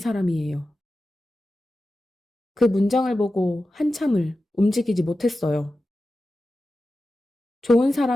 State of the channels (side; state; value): both; normal; correlation 0.93